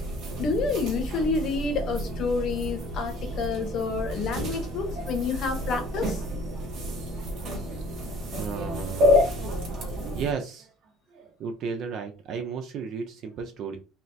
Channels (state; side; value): normal; both; correlation 0.50